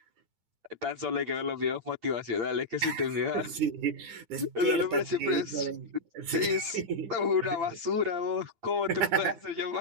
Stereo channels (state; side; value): late; left; 9.9 ms